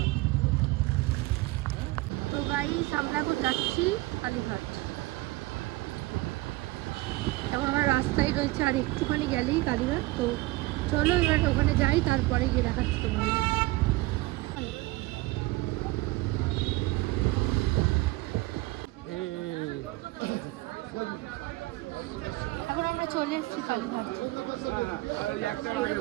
তো গাইস আমরা এখন যাচ্ছি কালীঘাট, এখন আমরা রাস্তায় রয়েছে, আর একটুখানি গেলেই কালীঘাট। তো চলো এবার ওখানে যাই, তারপরে গিয়ে দেখাচ্ছি তোমাদের। এখন আমরা চলে এসেছি কালীঘাট।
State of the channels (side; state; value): left; quieter; 20.8 dB